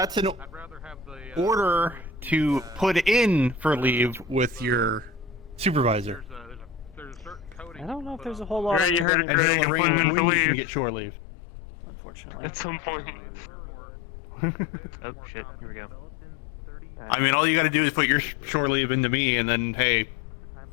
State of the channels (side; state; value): right; drops out; at 9.1 s